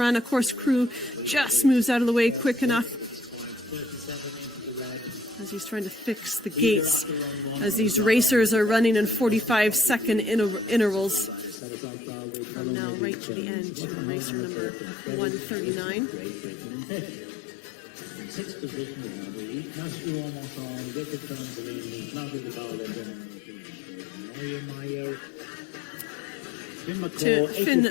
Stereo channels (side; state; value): right; drops out; at 11.6 s